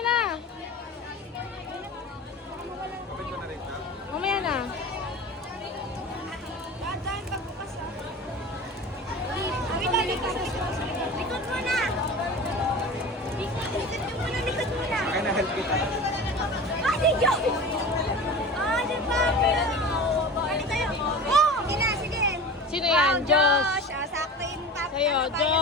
na. Mamaya na. Likod mo na! Likod mo na! Kaya na-help kita. Ah, si Joe! Ah, si Fabio! Balik tayo! Oh! Sige na, sige! Sino yan? Josh. Ah, sakto yung Pablo. Sa'yo,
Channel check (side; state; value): both; normal; correlation 0.34